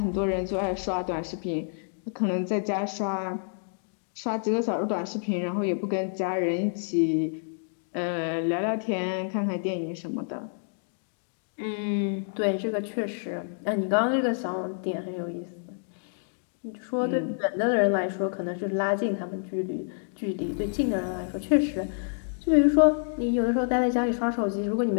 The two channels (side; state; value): right; silent; digital silence